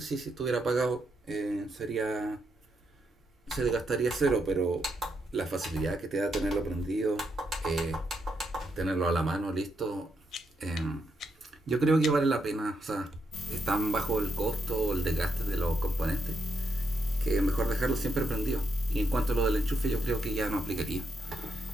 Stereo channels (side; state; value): both; normal; correlation 0.81